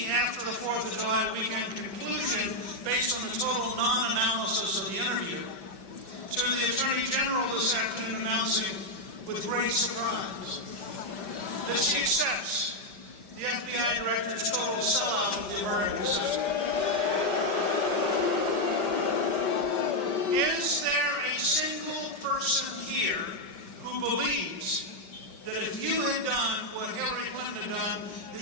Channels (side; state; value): right; late; 5.4 ms